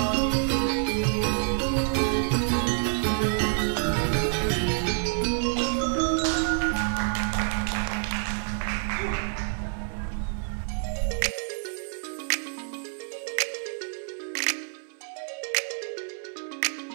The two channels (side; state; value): left; silent; 60 dB below the other